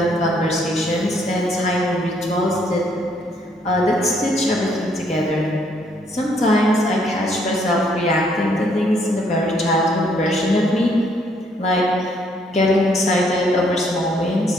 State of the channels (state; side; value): normal; both; correlation 0.68